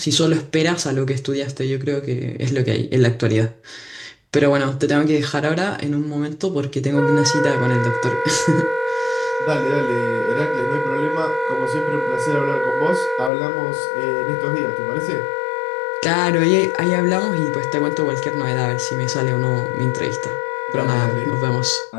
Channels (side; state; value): right; drops out; at 13.3 s